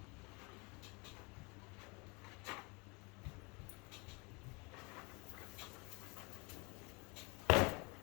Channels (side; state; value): right; quieter; 29.4 dB